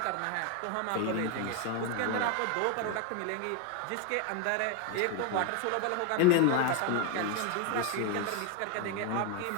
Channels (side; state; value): both; different; correlation 0.01